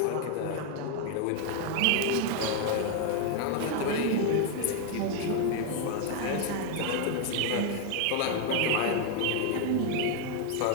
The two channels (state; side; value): different; both; correlation 0.01